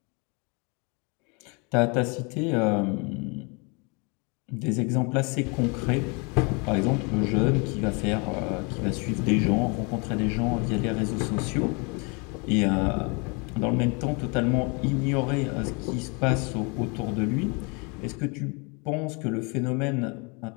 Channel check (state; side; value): quieter; right; 31.6 dB